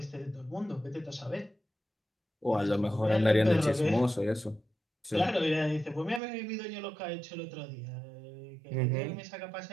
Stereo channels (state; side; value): drops out; left; at 6.2 s